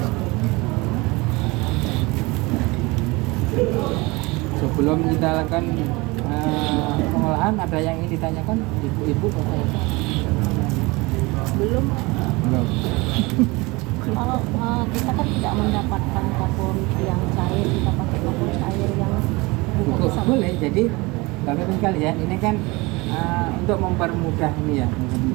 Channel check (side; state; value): left; quieter; 24.0 dB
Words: Sebelum kita lakukan pengolahan, ada yang ingin ditanyakan Ibu Bapak ya? Belum. Kalau kita kan tidak mendapatkan kapur yang cair, kita pakai kapur cair yang boleh. Jadi Bapak-Ibu sekalian, ini kan untuk mempermudah ini ya,